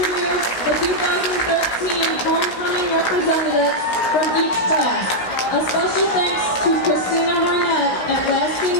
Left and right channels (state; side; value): late; right; 16 ms